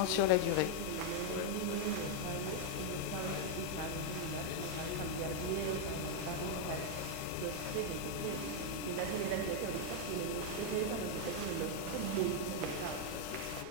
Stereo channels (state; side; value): different; both; correlation 0.00